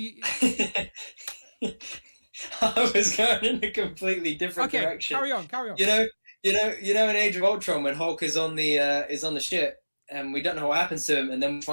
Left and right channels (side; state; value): both; inverted; correlation -1.00